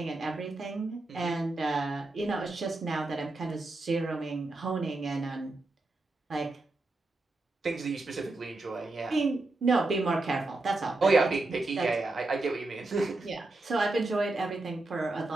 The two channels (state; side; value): quieter; left; 3.0 dB